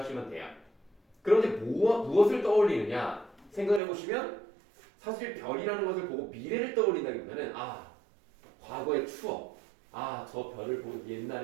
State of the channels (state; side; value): drops out; left; at 3.8 s